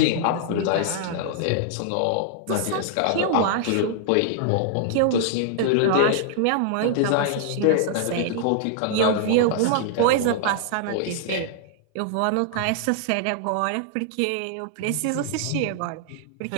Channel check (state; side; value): different; both; correlation -0.01